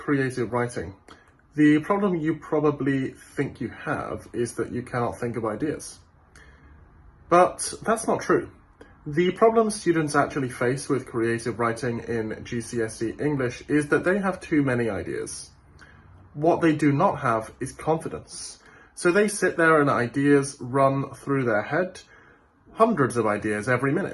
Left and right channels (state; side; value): identical; both; correlation 1.00